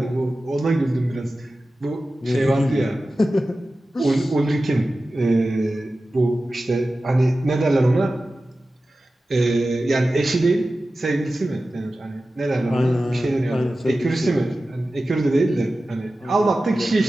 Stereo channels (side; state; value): both; normal; correlation 0.95